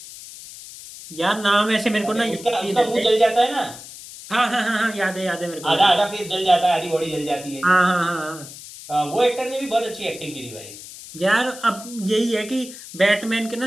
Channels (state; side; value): noise; left; hiss, 15 dB below the sound